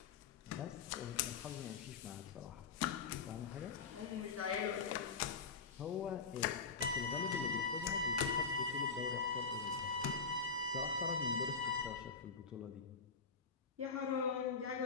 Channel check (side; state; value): right; quieter; 4.9 dB